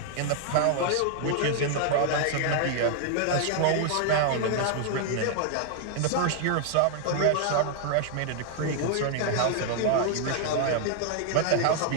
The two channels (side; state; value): both; different; correlation 0.00